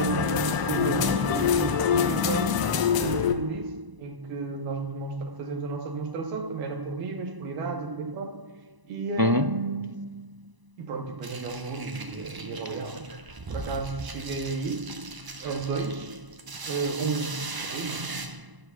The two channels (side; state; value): left; late; 1.0 ms